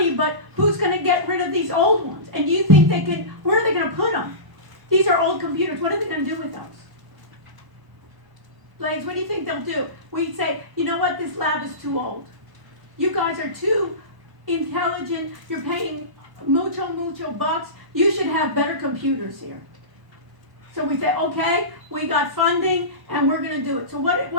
but who's going to get rid of these old ones? And do you think they can, where are they going to put them? These are old computers. What are they going to do with those? Blaze, what do you think they'll do? We'd say, you know what, this lab is too old. You guys are too intelligent. You're paying mucho bucks. You should have better computers here. So we say, okay, we got funding, and we're going to do it. So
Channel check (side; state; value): left; late; 1.0 ms